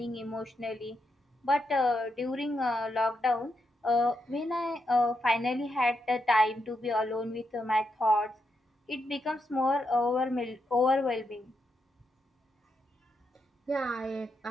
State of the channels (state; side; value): normal; both; correlation 0.83